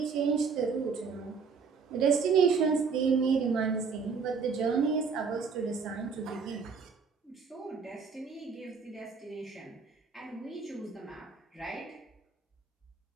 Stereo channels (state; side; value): quieter; left; 5.4 dB